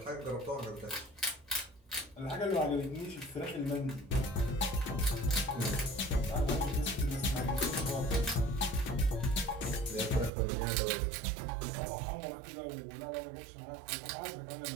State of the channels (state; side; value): drops out; left; at 10.3 s